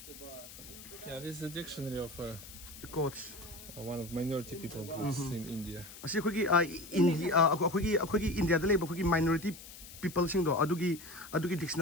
Yeah, this is a dictionary of coach one of minority people groups in India. ꯑꯁꯤ ꯑꯩꯈꯣꯏꯒꯤ ꯏꯟꯗꯤꯌꯥꯗ ꯂꯩꯕ ꯑꯩꯈꯣꯏꯒꯤ ꯃꯥꯏꯅꯣꯔꯤꯇꯤ ꯄꯤꯄꯜꯁꯤꯡꯗꯣ ꯑꯗꯨꯒꯤ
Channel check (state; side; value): noise; left; hiss, 16 dB below the sound